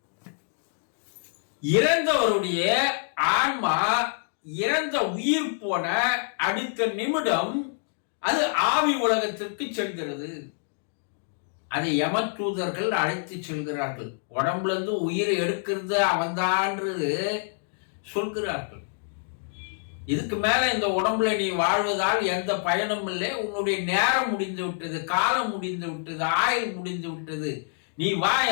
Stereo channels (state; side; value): silent; right; digital silence